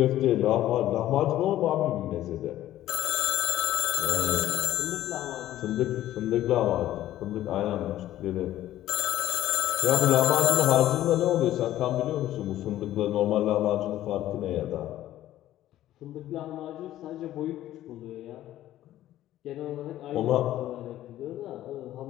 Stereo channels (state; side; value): quieter; right; 13.6 dB